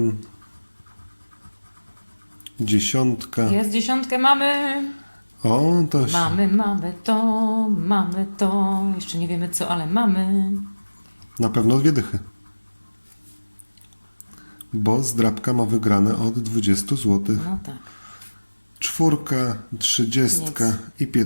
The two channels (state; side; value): inverted; both; correlation -1.00